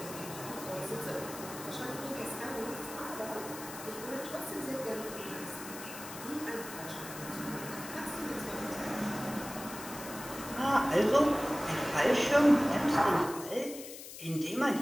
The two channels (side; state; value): left; noise; hiss, 12 dB below the sound